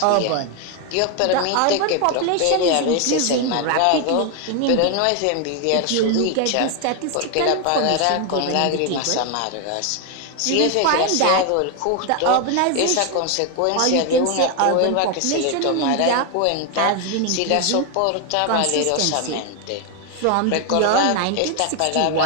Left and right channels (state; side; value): different; both; correlation 0.01